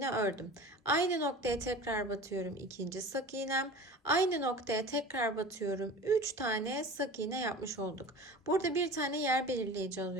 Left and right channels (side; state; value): both; normal; correlation 0.37